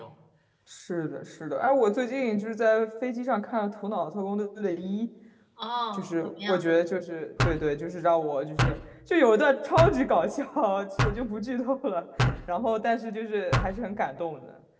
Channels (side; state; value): both; identical; correlation 1.00